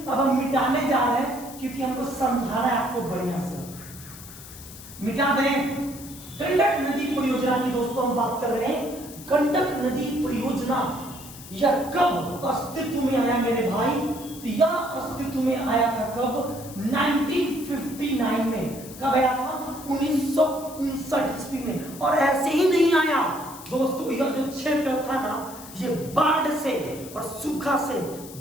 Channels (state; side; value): noise; left; hiss, 16 dB below the sound